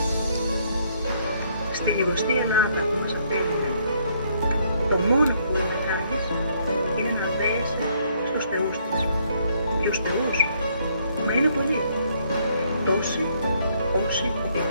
Στη λιγοστή Ελλάδα που μας απέλυνε, το μόνο που μπορεί να κάνεις είναι να δέεσαι στους θεούς της. Ποιους θεούς? Μα είναι πολλοί. Τόσοι όσοι ο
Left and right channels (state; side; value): inverted; both; correlation -0.68